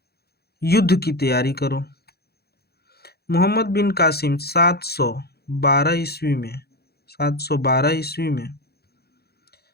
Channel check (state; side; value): late; right; 0.46 ms